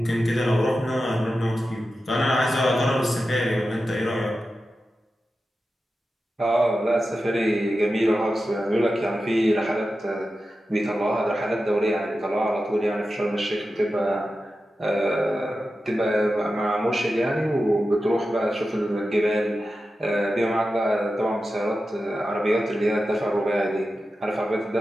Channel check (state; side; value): normal; both; correlation 0.92